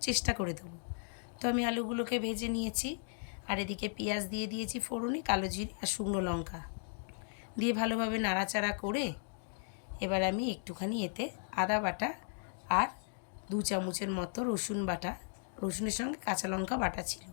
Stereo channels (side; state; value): right; silent; digital silence